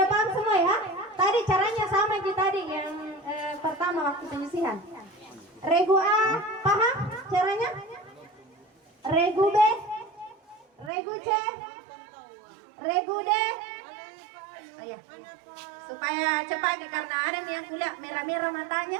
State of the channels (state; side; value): drops out; left; at 10.9 s